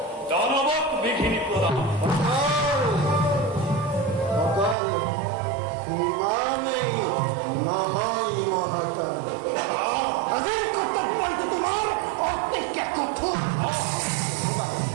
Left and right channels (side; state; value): left; drops out; at 4.8 s